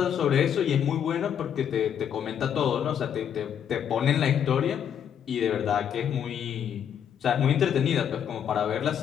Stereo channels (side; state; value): right; quieter; 8.8 dB